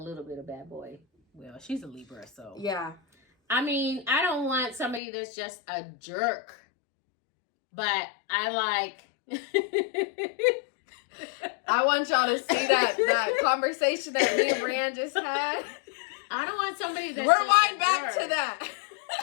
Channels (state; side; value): drops out; right; at 5.0 s